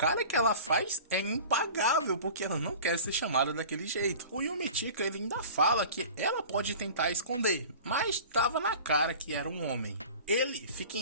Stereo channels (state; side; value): inverted; both; correlation -0.39